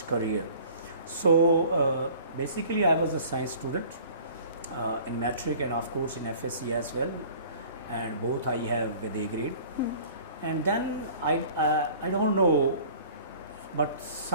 career. So basically I was a science student in matric, and of course in FSC as well, and both I have with A grade. And then I don't know, but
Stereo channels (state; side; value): inverted; both; correlation -0.48